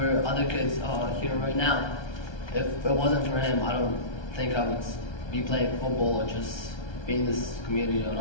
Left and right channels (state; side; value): late; right; 1.3 ms